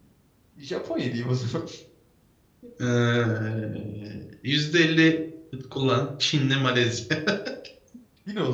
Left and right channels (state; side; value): identical; both; correlation 1.00